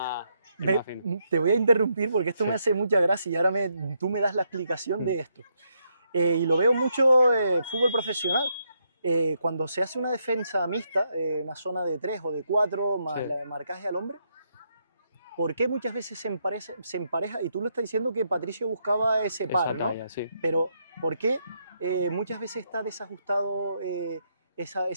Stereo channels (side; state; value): both; inverted; correlation -0.78